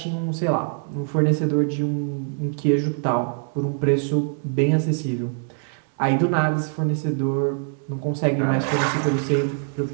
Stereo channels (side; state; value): left; silent; 58 dB below the other